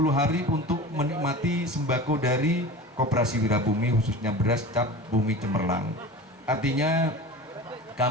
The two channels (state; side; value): normal; both; correlation 0.34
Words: hari untuk menikmati sembako dari Koperasi Wirabumi, khususnya beras cap bumi cemerlang. Artinya